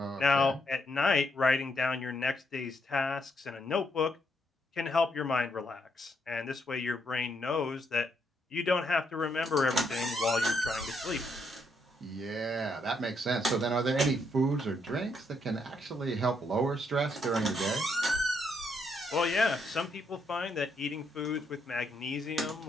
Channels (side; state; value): both; normal; correlation 0.76